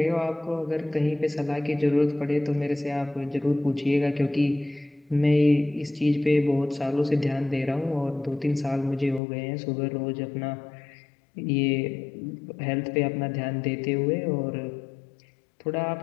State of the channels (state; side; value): drops out; right; at 9.2 s